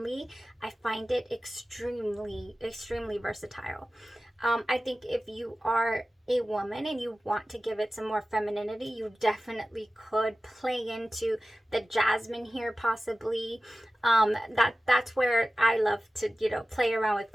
I find it extremely versatile. I think if you are a woman and you want to give it some more femininity, you definitely could play into the jasmine here possibly. That's where I love to, you know, play around with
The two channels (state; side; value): normal; both; correlation 0.96